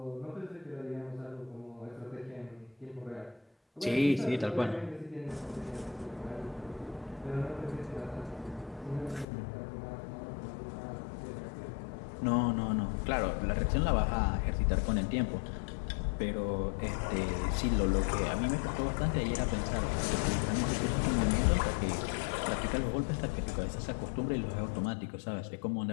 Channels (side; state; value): right; drops out; at 9.2 s